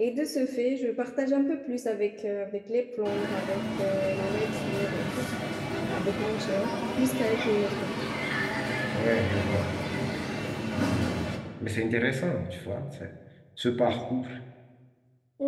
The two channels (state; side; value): identical; both; correlation 1.00